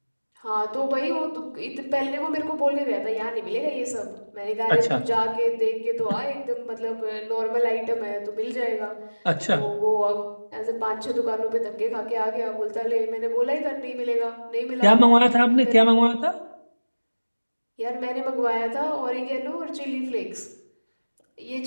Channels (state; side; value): inverted; both; correlation -1.00